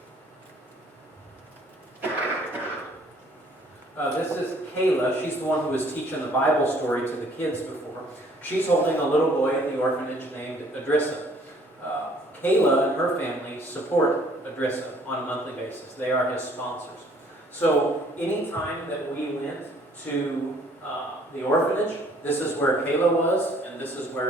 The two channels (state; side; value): normal; both; correlation 0.59